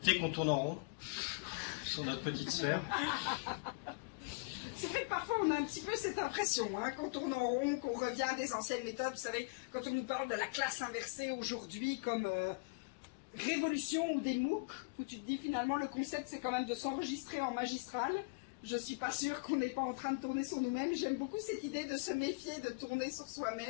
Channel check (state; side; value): quieter; right; 32.8 dB